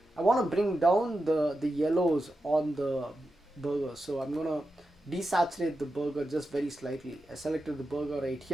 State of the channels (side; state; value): both; normal; correlation 0.90